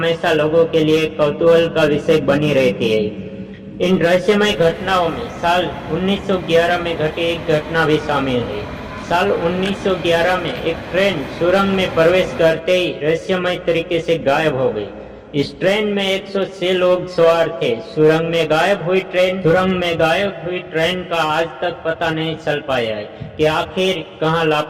लोगों के लिए कौतूहल का विषय बनी रहती है। इन रहस्यमय घटनाओं में साल 1911 में घटी एक घटना भी शामिल है। साल 1911 में एक ट्रेन सुरंग में प्रवेश करते ही रहस्यमय तरीके से गायब हो गई। इस ट्रेन में 106 लोग सवार थे। सुरंग में गायब हुई ट्रेन का आज तक पता नहीं चल पाया है कि आखिर कहां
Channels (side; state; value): both; identical; correlation 1.00